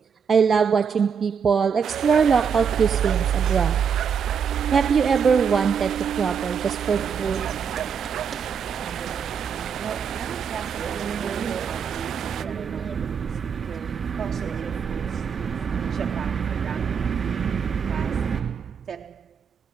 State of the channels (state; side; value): quieter; left; 6.8 dB